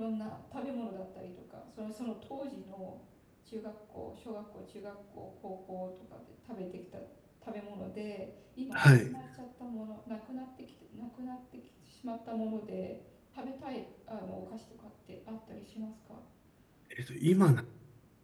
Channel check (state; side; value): identical; both; correlation 1.00